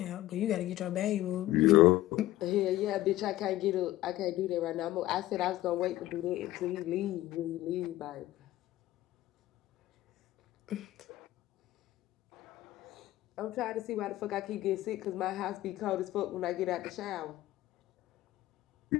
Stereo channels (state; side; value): quieter; right; 15.9 dB